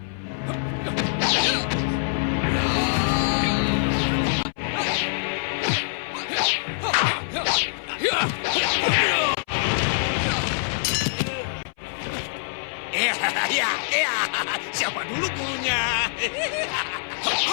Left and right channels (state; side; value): silent; right; 59 dB below the other